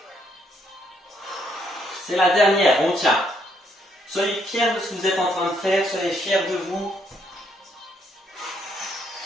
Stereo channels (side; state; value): both; normal; correlation 0.72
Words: C'est la dernière, on tient. Soyez fiers de ce que vous êtes en train de faire, soyez fiers de vous.